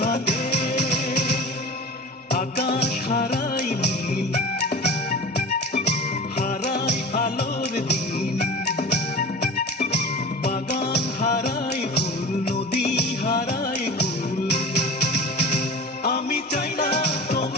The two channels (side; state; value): both; normal; correlation 0.36